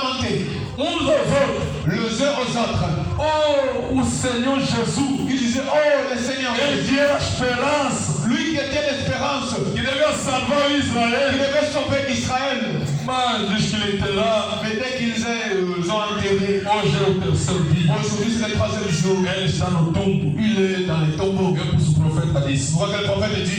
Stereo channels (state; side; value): identical; both; correlation 1.00